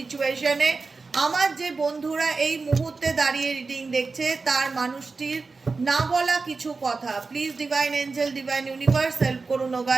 আমার যে বন্ধুরা এই মুহূর্তে দাঁড়িয়ে রিডিং দেখছে তার মানুষটির না বলা কিছু কথা, please divine angel, divine universe help করুন ও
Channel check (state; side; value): quieter; left; 4.2 dB